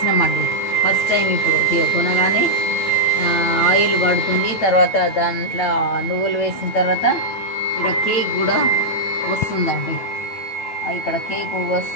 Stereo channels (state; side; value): late; right; 9.0 ms